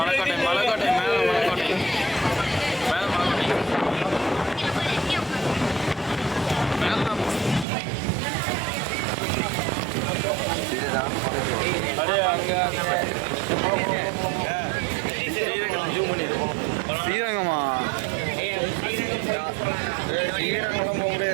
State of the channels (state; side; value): drops out; left; at 7.7 s